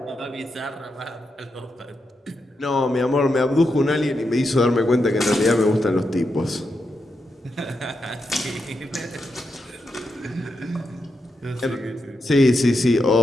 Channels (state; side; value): normal; both; correlation 0.85